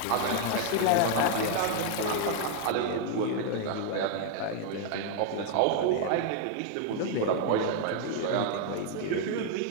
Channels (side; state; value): both; different; correlation 0.00